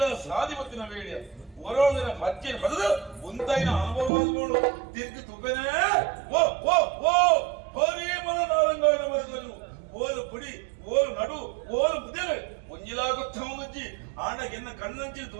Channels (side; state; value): left; drops out; at 4.1 s